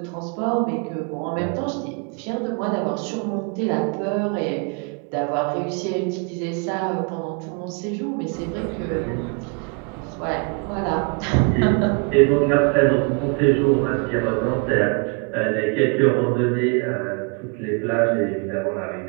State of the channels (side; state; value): left; quieter; 34.0 dB